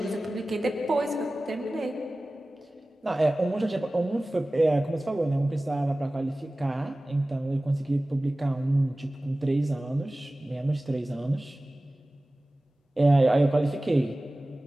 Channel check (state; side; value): normal; both; correlation 0.97